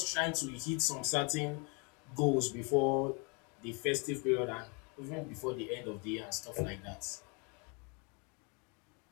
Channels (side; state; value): right; quieter; 32.7 dB